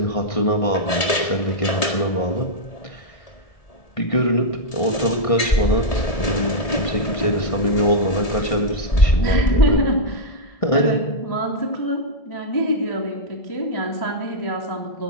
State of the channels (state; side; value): late; right; 1.7 ms